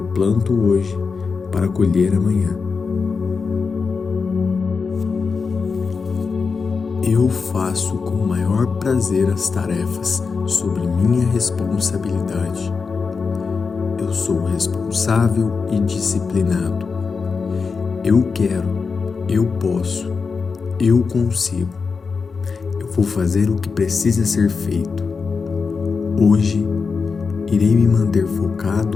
planto hoje para colher amanhã. Eu faço com o maior prazer as tarefas sobre minha responsabilidade. Eu sou responsável e disciplinado. Eu quero, eu posso, eu consigo. Eu vou fazer o que precisa ser feito. Hoje, irei me manter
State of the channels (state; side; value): quieter; right; 5.0 dB